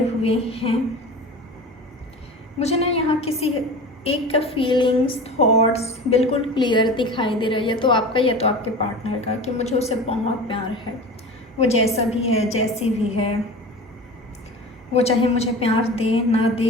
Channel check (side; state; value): both; normal; correlation 0.34